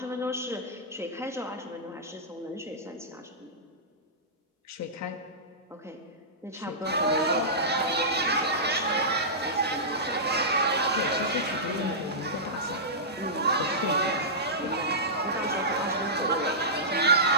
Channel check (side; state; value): both; normal; correlation -0.16